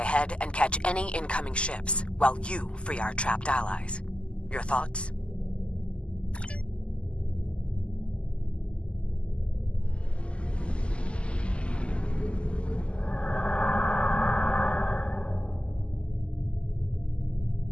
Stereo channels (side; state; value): right; late; 0.053 ms